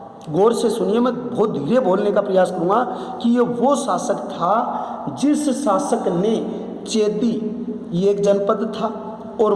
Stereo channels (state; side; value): identical; both; correlation 1.00